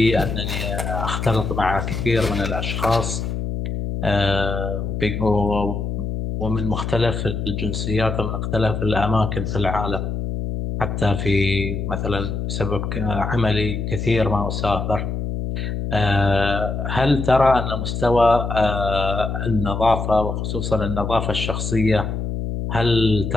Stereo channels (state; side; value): noise; left; hum, 3 dB below the sound